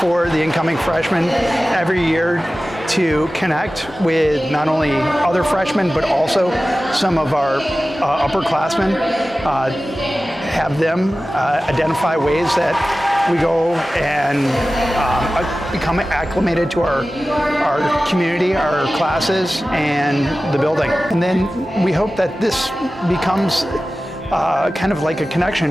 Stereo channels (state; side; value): normal; both; correlation 0.96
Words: the incoming freshmen every year to connect with not only other freshmen but also some of our upperclassmen, have them identify ways that we go and become acclimated to our community, our classes, and the building. And then we hope that this becomes kind of like a connection,